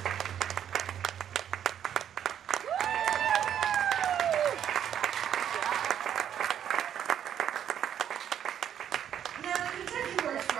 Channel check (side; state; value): left; quieter; 9.6 dB